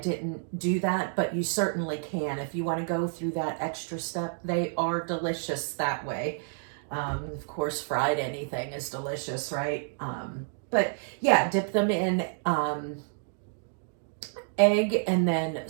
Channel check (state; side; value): silent; left; digital silence